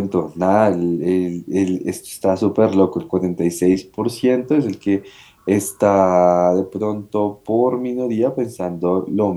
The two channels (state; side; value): identical; both; correlation 1.00